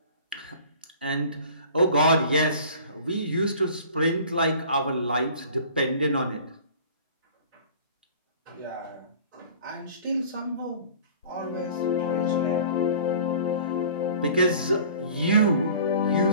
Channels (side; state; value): both; inverted; correlation -0.46